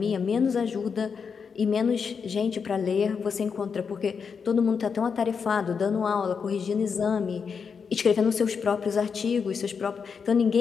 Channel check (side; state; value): right; quieter; 6.0 dB